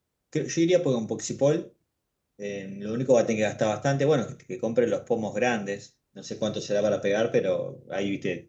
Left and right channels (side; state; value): both; identical; correlation 1.00